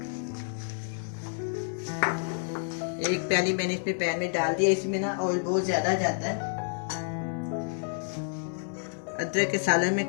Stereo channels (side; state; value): right; silent; 58 dB below the other